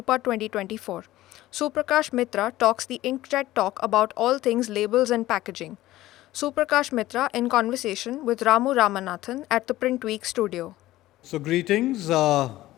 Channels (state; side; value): quieter; right; 16.0 dB